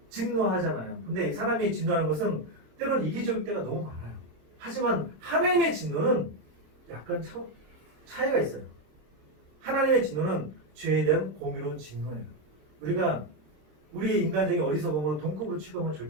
진노하잖아요. 근데 사람이 진노하는 것은 때로는 이기적일 때가 너무 많아요. 하지만 하나님의 진노는 약간 차이가 있어요. 하나님의 진노는 죄에 대한 공의로운 진노예요. 우리가 우리 인간적인 어리석음으로 동급으로 취급하면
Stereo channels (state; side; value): late; left; 26 ms